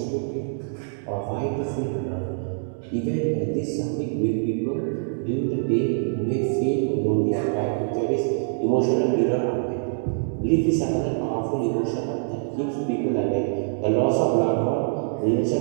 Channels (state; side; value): silent; left; digital silence